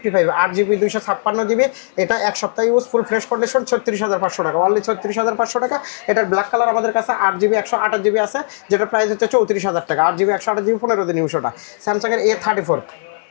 8 GB 256 GB, এটা এক সপ্তাহ ইউজ, ফুল ফ্রেশ কন্ডিশন, 36,500 টাকা, অনলি 36,500 টাকা। এটার ব্ল্যাক কালার আমাদের কাছে 8 GB 128 GB আছে, যেটা প্রাইস হচ্ছে 34,000 টাকা, 8 GB 128 GB 15 দিন ইউজ। ওটা স্যামসাংয়ের A34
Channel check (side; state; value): right; silent; 65 dB below the other